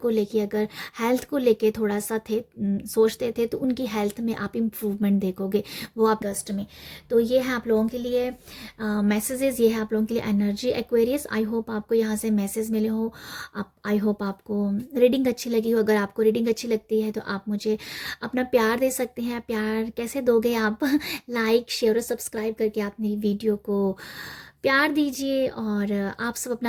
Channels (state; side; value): identical; both; correlation 1.00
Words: लेके अगर हेल्थ को लेके थोड़ा सा सोचते थे, तो उनकी हेल्थ में आप इम्प्रूवमेंट देखोगे, वो आप अगस्त में। तो ये है आप लोगों के लिए मैसेजेस, ये है आप लोगों के लिए एनर्जी एक्वेरियस। आई होप आपको यहाँ से मैसेज मिले हो, आप आई होप आपको रीडिंग अच्छी लगी हो। अगर आपको रीडिंग अच्छी लगती है तो आप मुझे अपना प्यार दे सकते हैं। प्यार कैसे दोगे आप? लाइक शेयर और सब्सक्राइब करके अपनी वीडियो को प्यार दीजिए, और आप सब